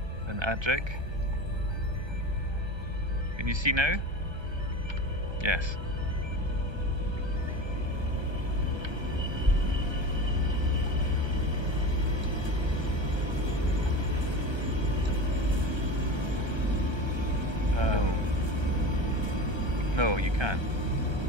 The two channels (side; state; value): left; late; 1.3 ms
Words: and Adric. Can you see now? Yes. No, you can't.